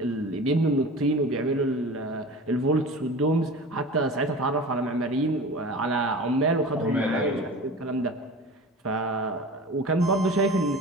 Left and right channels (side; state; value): both; normal; correlation 0.36